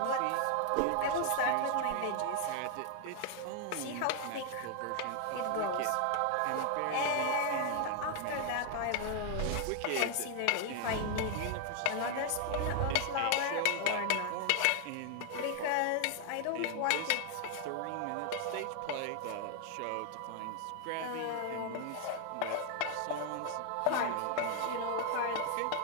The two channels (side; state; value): both; different; correlation 0.00